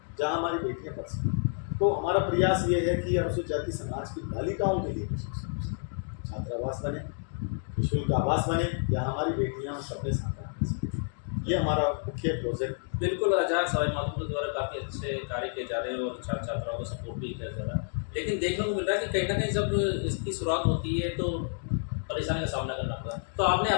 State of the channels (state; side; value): silent; right; digital silence